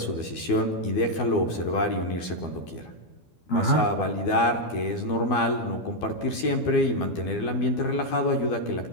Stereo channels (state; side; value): late; right; 12 ms